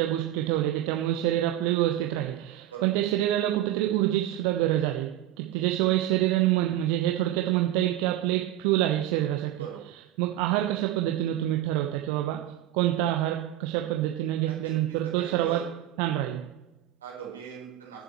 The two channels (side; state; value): left; quieter; 13.2 dB